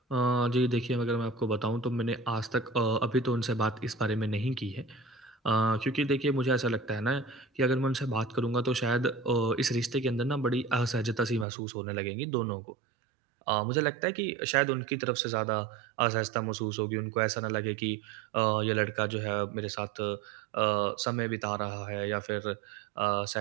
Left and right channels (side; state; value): left; drops out; at 11.5 s